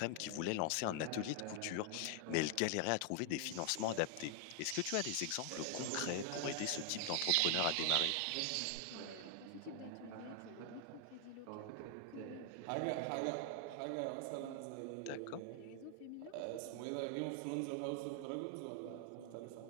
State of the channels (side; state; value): both; different; correlation 0.00